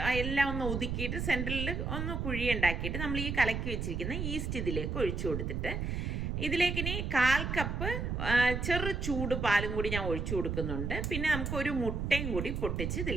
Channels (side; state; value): right; noise; rumble, 2 dB below the sound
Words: എല്ലാം ഒന്ന് ഒതുക്കിയിട്ട് സെൻറ്ററിൽ ഒന്ന് കുഴി ഉണ്ടാക്കിയിട്ട് നമ്മൾ ഈ കലക്കി വെച്ചിരിക്കുന്ന ഈസ്റ്റ് ഇതിലേക്ക് ഒഴിച്ചു കൊടുത്തിട്ട് ഇതിലേക്ക് ഇനി 1/4 കപ്പ് ചെറു ചൂട് പാലും കൂടി ഞാൻ ഒഴിച്ചു കൊടുക്കുന്നുണ്ട്. പിന്നെ നമുക്ക് ഒരു മുട്ടയും കൂടി പൊട്ടിച്ച്